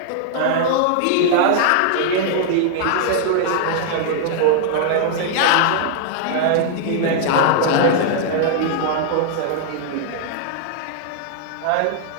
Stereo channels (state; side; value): different; both; correlation -0.01